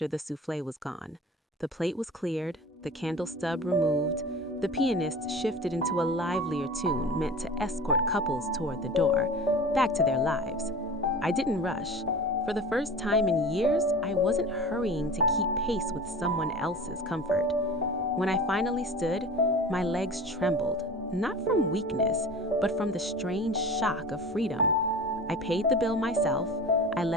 the souffle was gone. The plate was cleared, the candle stub removed, the pianist shifted into a livelier tune meant to escort couples toward the door, back to their lives. I didn't rush. For the first time in years, I wasn't hurrying to keep pace with someone else's comfort. When I finally stood, my legs trembled, not from weakness, but from the strange shock of freedom. I paid the bill myself, I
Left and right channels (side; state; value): both; normal; correlation 0.36